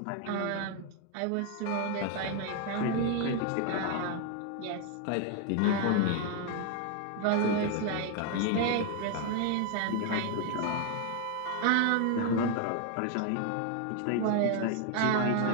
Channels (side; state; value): both; different; correlation 0.01